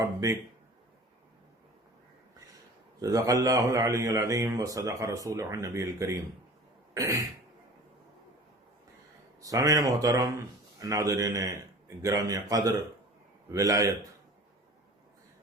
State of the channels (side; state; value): both; normal; correlation 0.42